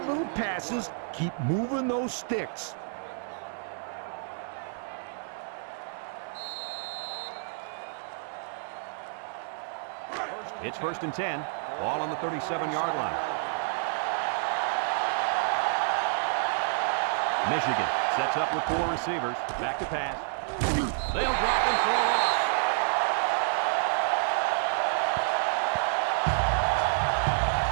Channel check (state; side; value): silent; left; 58 dB below the other